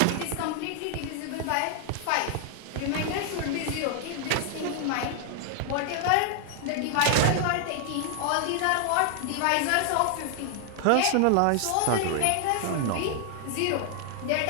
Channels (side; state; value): both; different; correlation 0.00